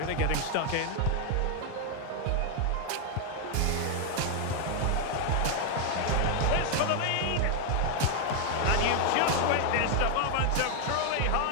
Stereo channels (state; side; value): different; both; correlation 0.00